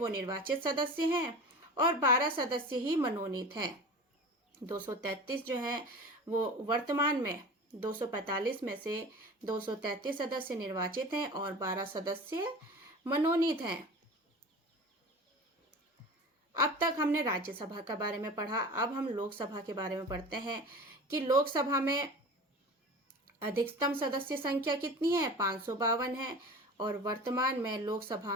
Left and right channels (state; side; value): normal; both; correlation 0.36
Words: निर्वाचित सदस्य हैं और 12 सदस्य ही मनोनीत हैं। 233 जो है वो वर्तमान में 245 में से 233 सदस्य निर्वाचित हैं और 12 सदस्य मनोनीत हैं। अब तक हमने राज्यसभा के बारे में पढ़ा। अब हम लोकसभा के बारे में पढ़ते हैं कि लोकसभा में अधिकतम सदस्य संख्या कितनी है? 552 है और वर्तमान में लोकसभा